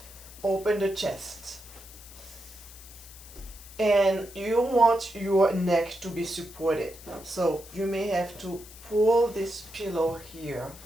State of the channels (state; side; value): noise; left; hiss, 18 dB below the sound